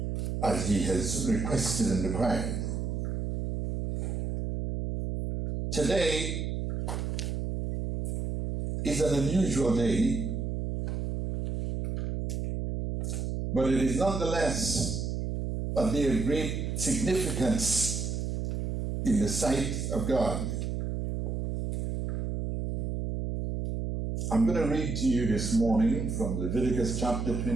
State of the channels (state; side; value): noise; right; hum, 2 dB below the sound